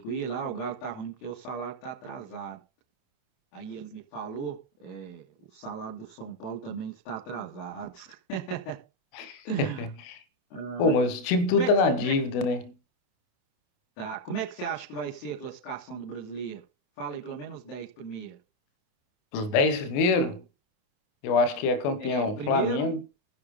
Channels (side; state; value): right; late; 28 ms